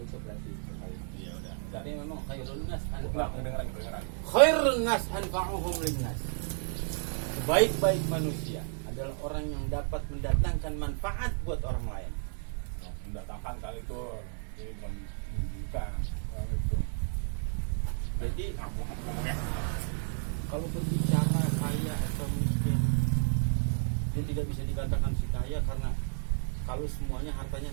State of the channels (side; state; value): left; silent; 56 dB below the other